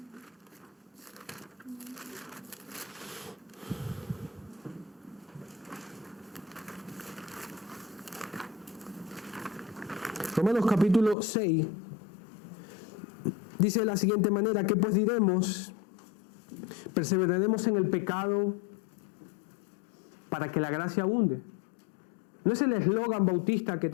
Romanos capítulo 6 dice de la siguiente manera: ¿qué pues diremos? ¿Perseveraremos en el pecado para que la gracia abunde? No es el eslogan bautista que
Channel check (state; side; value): drops out; right; at 11.2 s